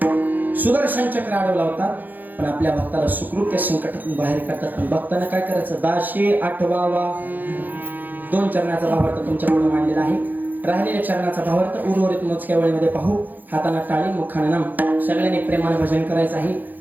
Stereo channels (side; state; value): left; late; 0.085 ms